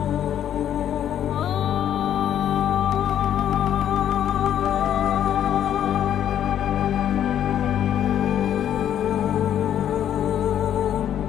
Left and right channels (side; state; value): right; quieter; 10.3 dB